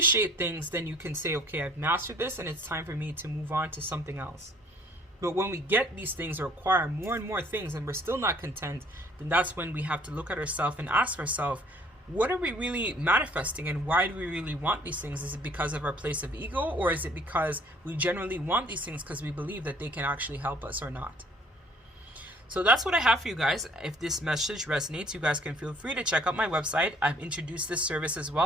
things, then you can say, okay, I've mastered this and it's time for me to move on to something else. But when we get these things or acquire more and more things and we're still not content, then that's when we have to look at ourselves and ask ourselves, what are we really manifesting and why do we really want these things? Is it because of our place of ego, or is it because we generally want these things because we believe that they can actually help us or not? So that's what I have for you guys. If this message resonates, you guys can feel free to check out my website. I've introduced this service as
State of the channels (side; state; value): both; normal; correlation 0.57